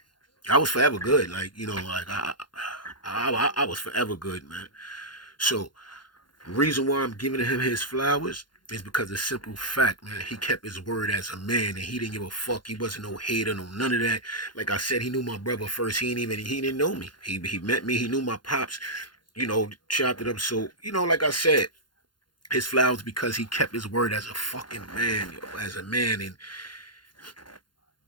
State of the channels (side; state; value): right; late; 0.71 ms